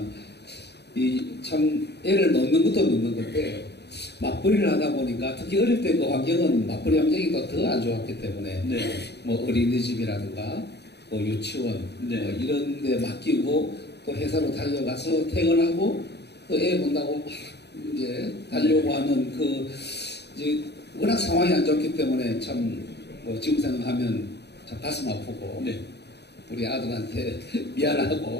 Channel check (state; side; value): late; right; 0.49 ms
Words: 이 참 애를 놓는 것도 놓는 건데 맞벌이를 하다 보니까 특히 어릴 때 그 환경은 맞벌이 환경이 더 안 좋았기 때문에 네. 뭐 어린이집이라든가 뭐 유치원 네. 뭐 이런 데 맡기고 또 회사로 달려가서 퇴근하고 또 애 본다고 막 이제 달려고 하는 그 이제 워낙 상황이 안 좋기 때문에 참 뭐 지금 생각하면 참 가슴 아프고 네. 우리 아들한테